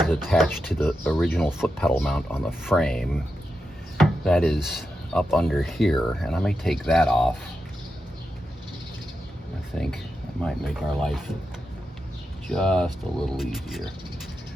is attached to the original foot pedal mount on the frame. That is up under here, and I may take that off. I think that might make our life just a little easier.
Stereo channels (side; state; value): both; normal; correlation 0.88